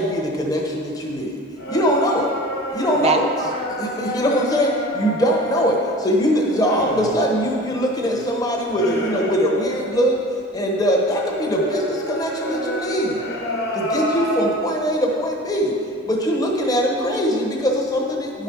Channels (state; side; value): normal; both; correlation 0.40